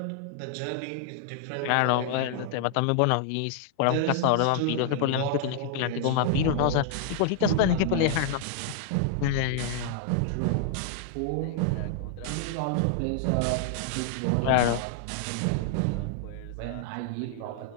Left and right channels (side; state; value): both; different; correlation -0.01